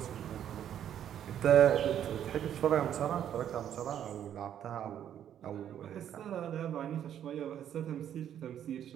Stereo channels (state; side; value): quieter; left; 10.0 dB